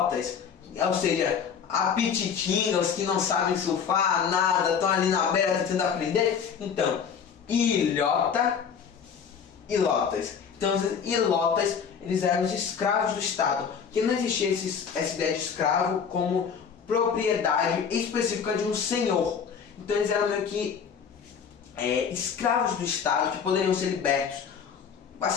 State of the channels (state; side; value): quieter; right; 6.9 dB